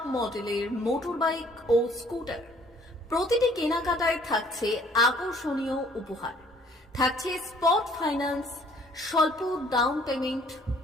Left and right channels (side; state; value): both; normal; correlation 0.59